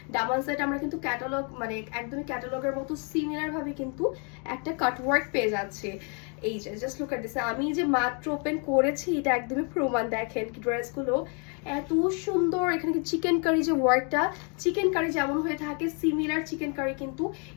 দামান সাইডে আমরা কিন্তু ক্যাটালগ, মানে একদমই ক্যাটালগের মতো সিমিলার ভাবে কিন্তু একটা কাটওয়ার্ক পেয়ে যাচ্ছে। এই যে জাস্ট লুক এট দিস, আমি যে মাত্র ওপেন করেছি এটা একদমই প্রমাণ। দেখেন কি ড্রেসগুলো এত সুন্দর। এখানে কি চিকেন কারি যে ওয়ার্কটা, চিকেন কারি যেমন হয়ে থাকে সিমিলার চিকেন কারি কিন্তু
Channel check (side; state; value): right; quieter; 37.5 dB